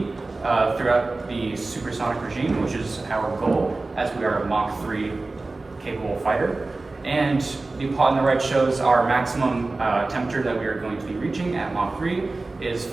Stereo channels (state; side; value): quieter; left; 3.3 dB